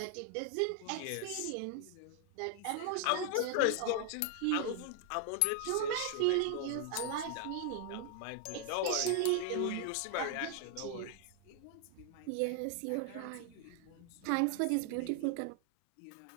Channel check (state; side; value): different; both; correlation 0.00